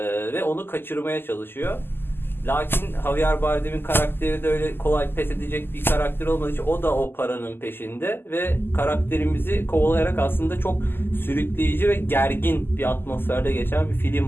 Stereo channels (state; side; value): late; right; 0.10 ms